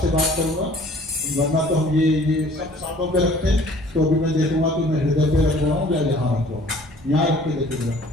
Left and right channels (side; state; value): both; normal; correlation 0.53